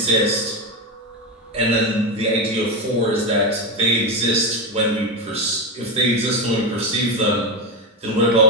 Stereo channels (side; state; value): both; normal; correlation 0.13